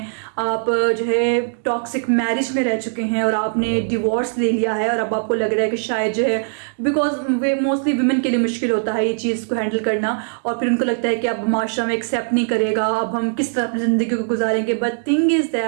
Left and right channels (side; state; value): left; silent; digital silence